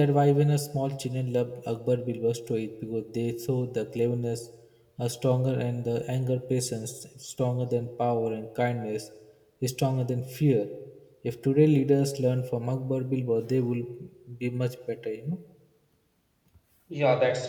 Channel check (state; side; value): identical; both; correlation 1.00